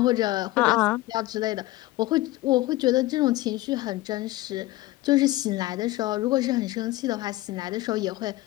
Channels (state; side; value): quieter; right; 18.0 dB